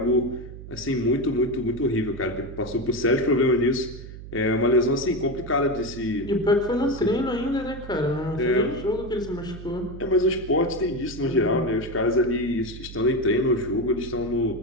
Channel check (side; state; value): right; noise; hum, 13 dB below the sound